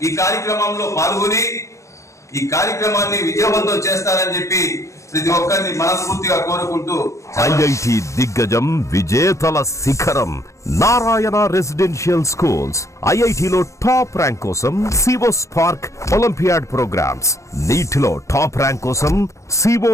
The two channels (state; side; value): late; right; 0.15 ms